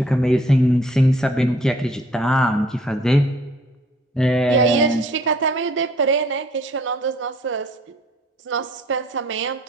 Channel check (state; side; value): normal; both; correlation 0.58